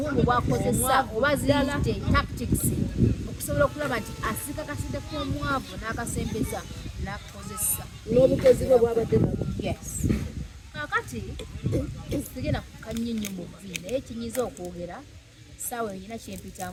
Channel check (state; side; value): identical; both; correlation 1.00